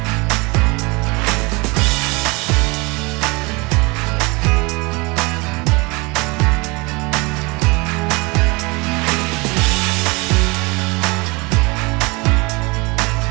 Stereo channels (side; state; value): left; quieter; 26.5 dB